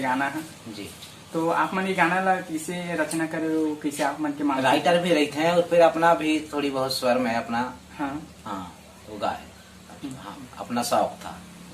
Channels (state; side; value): identical; both; correlation 1.00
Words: है जी। तो आप मन ये गाना ला कैसे रचना करे हो, कैसे आप मन के मान राइटर भी रहते हैं और फिर अपना भी थोड़ी बहुत स्वर में अपना हाँ वो गाए। हाँ, अपना शौक था